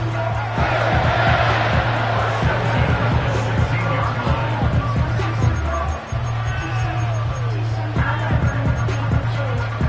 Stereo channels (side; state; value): both; identical; correlation 1.00